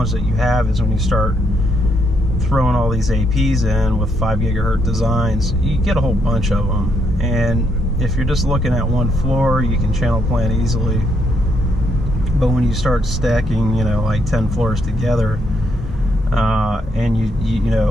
that you have is when you start throwing all these APs in with 5 gigahertz designs, you get a whole bunch of them. And if you're just looking at one floor, you can channel plan easily. But when you start stacking, you know, like 10 floors together, and you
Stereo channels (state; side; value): normal; both; correlation 0.75